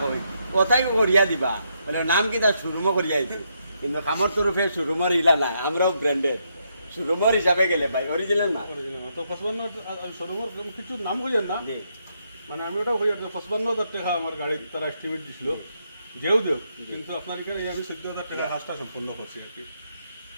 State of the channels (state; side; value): inverted; both; correlation -0.78